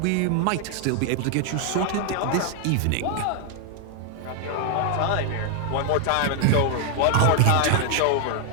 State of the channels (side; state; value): both; different; correlation 0.00